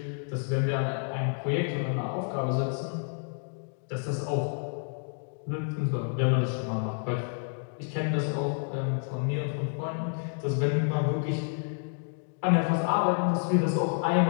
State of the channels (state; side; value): silent; right; 58 dB below the other